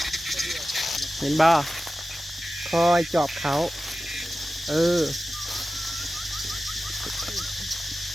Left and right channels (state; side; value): normal; both; correlation 0.94